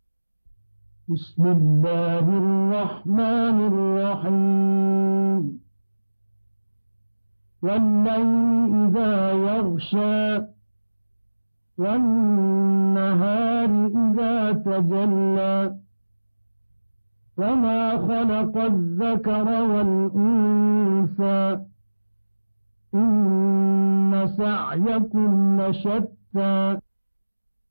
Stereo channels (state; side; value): inverted; both; correlation -1.00